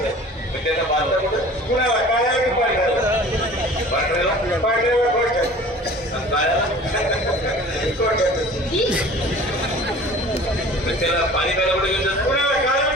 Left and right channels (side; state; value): both; normal; correlation 0.45